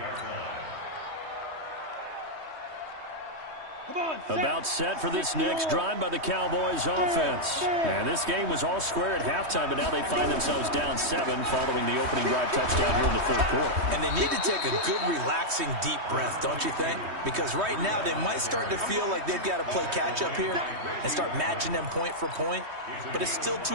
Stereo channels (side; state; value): left; late; 3.2 ms